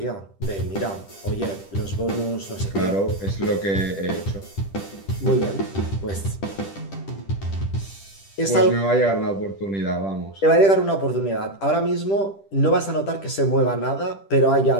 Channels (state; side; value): late; right; 10 ms